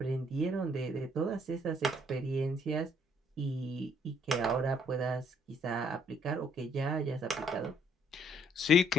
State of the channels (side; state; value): both; normal; correlation 0.65